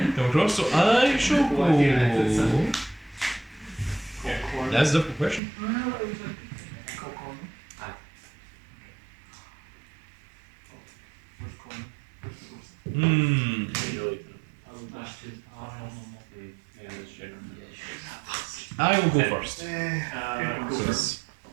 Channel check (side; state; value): left; drops out; at 5.4 s